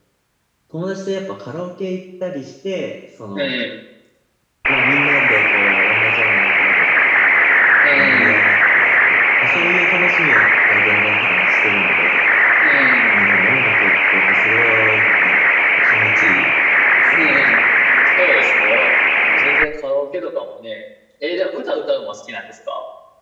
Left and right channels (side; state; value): both; identical; correlation 1.00